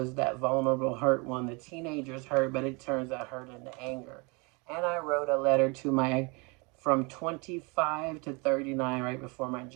that vulnerable, hurt one. The teenager's hurt, but it turns that hurt into anger. And I wrote a letter to my from 25 to 39 right before my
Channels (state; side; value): quieter; left; 29.9 dB